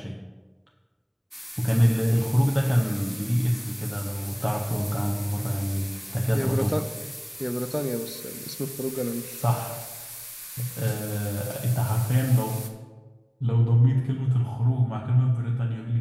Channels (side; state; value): both; identical; correlation 1.00